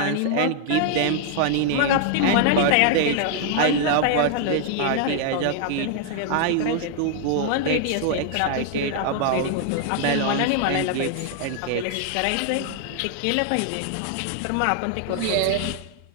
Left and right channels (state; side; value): different; both; correlation 0.00